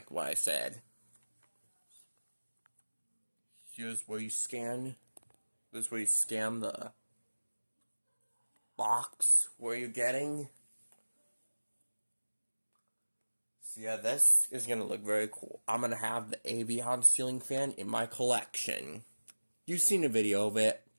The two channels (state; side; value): inverted; both; correlation -1.00